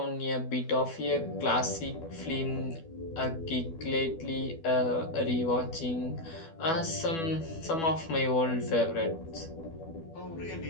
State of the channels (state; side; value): late; right; 12 ms